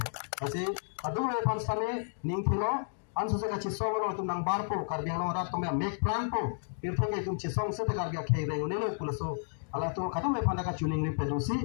Kasi aduh lepas sana ning kilo, anso se kaci song lo tum nang bar po, Karbiang Long rat tumya make plan po, pirthang ke tum cisong se te Karbiang khay reng ne lo pulaso. Ala tu kadang lepas nak tuning ni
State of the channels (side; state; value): right; silent; digital silence